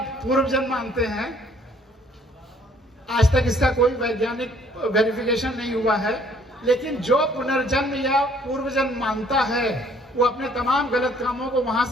पूर्व जन्म मानते हैं। आज तक इसका कोई वैज्ञानिक वेरिफिकेशन नहीं हुआ है, लेकिन जो पुनर्जन्म या पूर्व जन्म मानता है, वो अपने तमाम गलत कामों को वहां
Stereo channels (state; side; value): normal; both; correlation 0.60